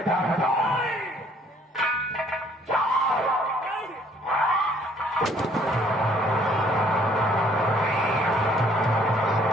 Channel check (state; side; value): normal; both; correlation 0.61